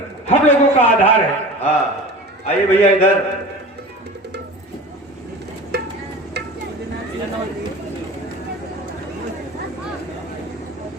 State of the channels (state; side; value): normal; both; correlation 0.36